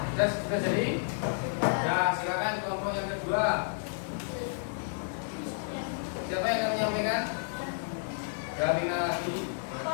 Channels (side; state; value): right; silent; digital silence